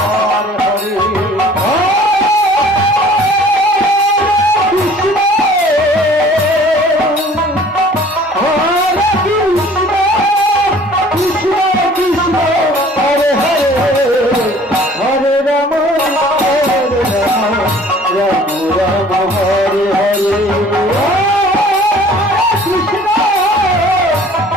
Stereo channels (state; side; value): normal; both; correlation 0.51